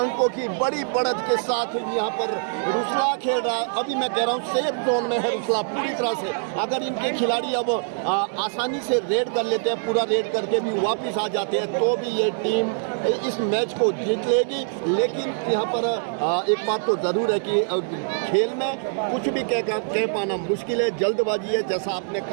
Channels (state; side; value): silent; left; digital silence